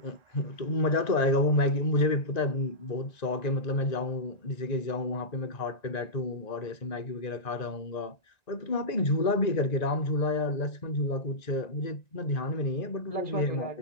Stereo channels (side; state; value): right; late; 1.9 ms